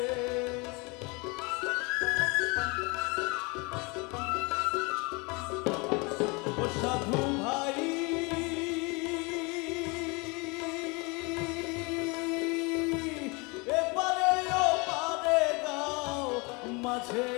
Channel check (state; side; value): quieter; right; 28.4 dB